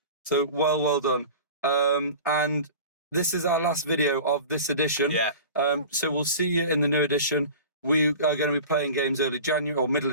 So well done. And this is our last video of this edition. Yeah. So we'll see you in the new edition. We are going to be playing games early January or middle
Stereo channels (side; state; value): both; inverted; correlation -0.37